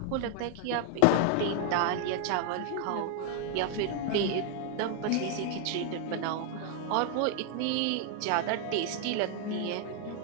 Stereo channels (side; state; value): both; different; correlation 0.00